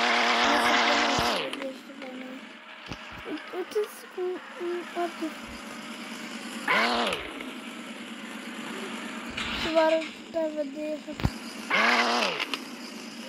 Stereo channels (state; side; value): identical; both; correlation 1.00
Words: Și vă arăt pe vedere.